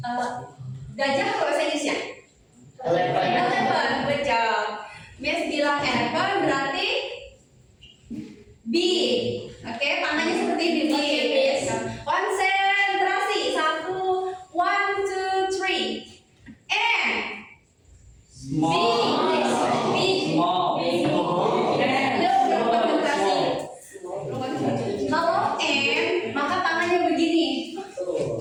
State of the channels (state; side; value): identical; both; correlation 1.00